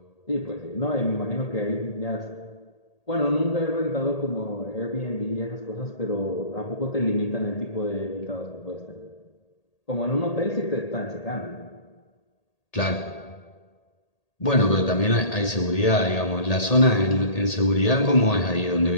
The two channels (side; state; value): right; late; 1.8 ms